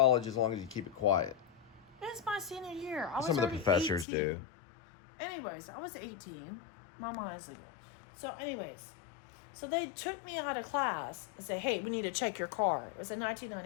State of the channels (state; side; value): drops out; right; at 4.0 s